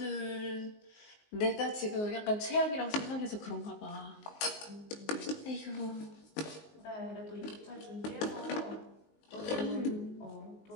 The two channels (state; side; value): late; right; 19 ms